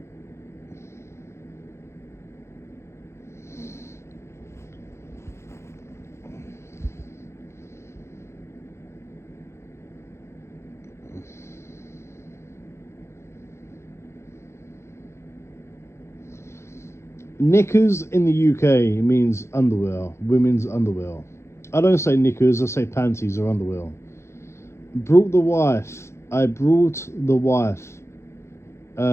Knickers in the UK means underwear, women's underwear. I don't say knickers, I say panties or underwear. Brought the wife. I brought the wife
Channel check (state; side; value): late; right; 0.13 ms